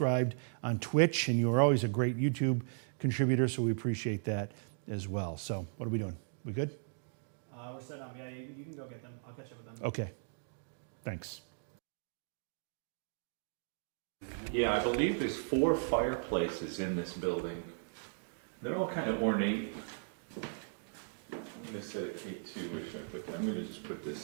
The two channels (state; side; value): silent; left; digital silence